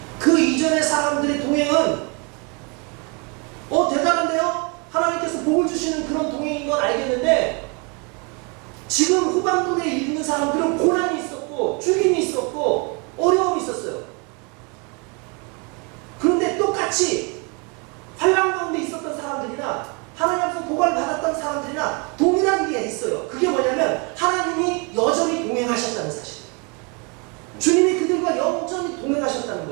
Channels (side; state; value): left; quieter; 32.5 dB